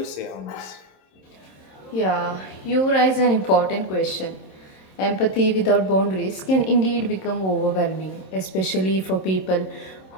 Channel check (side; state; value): right; late; 27 ms